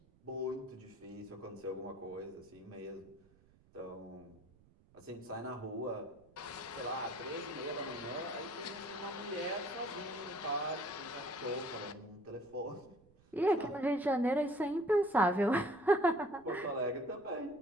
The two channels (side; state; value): right; noise; rumble, 28 dB below the sound